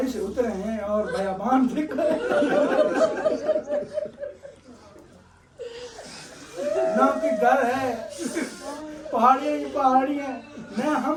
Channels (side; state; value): both; identical; correlation 1.00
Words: से उतरे हैं और बयाबान देख रहे हैं, ना कि घर है, पहाड़ियाँ ही पहाड़ियाँ। मैं हम